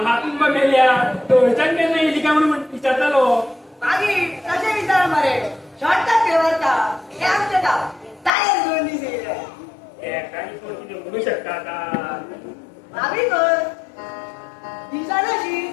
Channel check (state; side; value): drops out; right; at 8.3 s